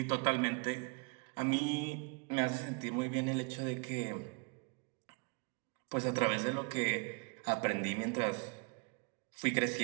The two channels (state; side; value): quieter; left; 33.3 dB